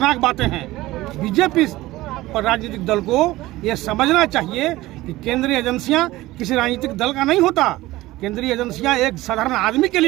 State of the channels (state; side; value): quieter; left; 17.8 dB